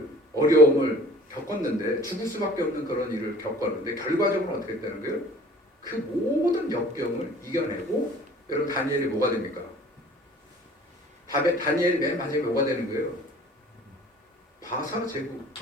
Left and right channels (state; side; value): normal; both; correlation 0.49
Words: 어려움을 겪었는데 죽을 수밖에 없는 그런 일을 겪었는데 결과적으로 어떻게 됐다는 거예요? 그 모든 역경을 이겨내고 여러분 다니엘이 뭐가 됩니까? 다니엘이 맨 마지막에 뭐가 되는 거예요? 바사 제국